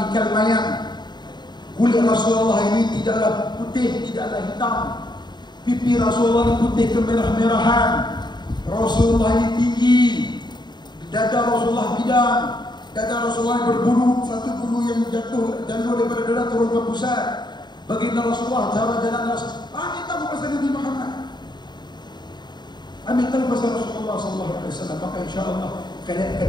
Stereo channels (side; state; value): right; late; 0.21 ms